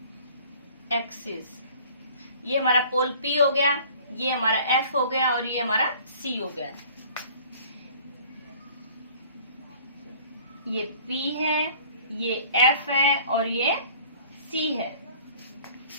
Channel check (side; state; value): both; inverted; correlation -0.49